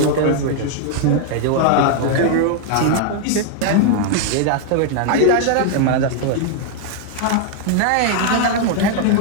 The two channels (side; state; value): both; different; correlation 0.00